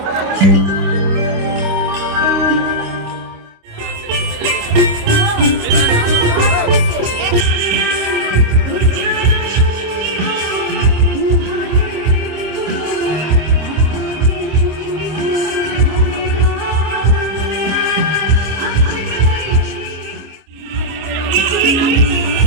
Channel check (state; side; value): late; left; 26 ms